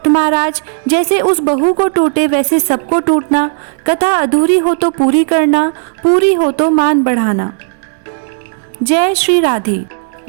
महाराज, जैसे उस बहू को टूटे वैसे सबको टूटना, कथा अधूरी हो तो पूरी करना, पूरी हो तो मान बढ़ाना। जय श्री राधे।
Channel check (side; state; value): left; silent; 68 dB below the other